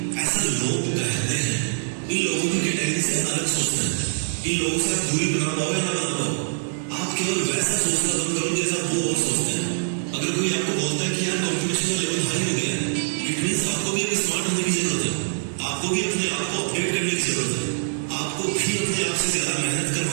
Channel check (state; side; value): silent; left; digital silence